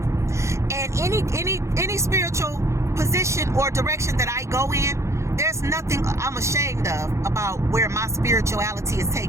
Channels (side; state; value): left; late; 0.14 ms